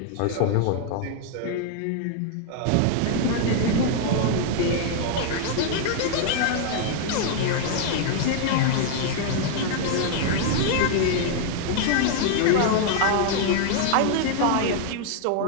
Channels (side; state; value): both; different; correlation 0.00